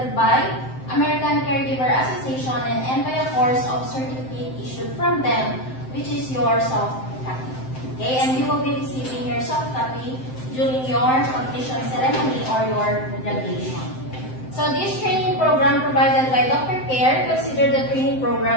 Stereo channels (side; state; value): right; late; 7.7 ms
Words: by American Caregiver Association and by a course of certificate issued from them, which is your soft copy. Okay? And you will be receiving your soft copy during your completion ceremony or your graduation. So this training program provided by Dr. Care considered the training